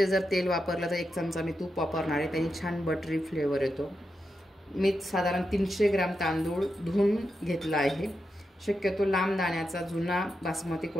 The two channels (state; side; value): normal; both; correlation 0.87